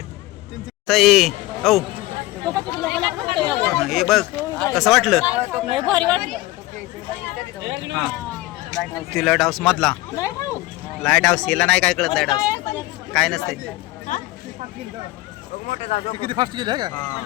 ताई औ हे बघ कसं वाटलं. लय भारी वाटलं. ती लाईट हाऊस मधला लाईट हाऊस हिला नाही काय कळत. लाईट हाऊस काय नसते. किती फास्ट गेले का?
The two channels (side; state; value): right; quieter; 18.5 dB